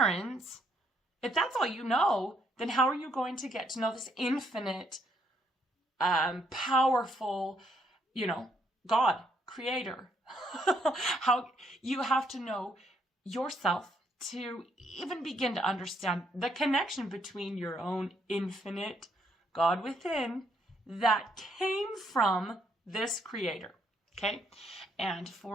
If that's all you know, then how are you going to get to know this infinite, powerful, God, creator? How you have to know yourself to even begin to understand the connection between your own infinite God within that came from this creator. Okay. And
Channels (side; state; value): both; normal; correlation 0.72